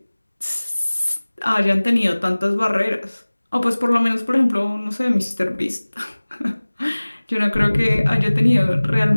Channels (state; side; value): inverted; both; correlation -1.00